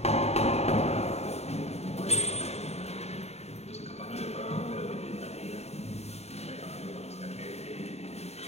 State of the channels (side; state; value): right; late; 0.31 ms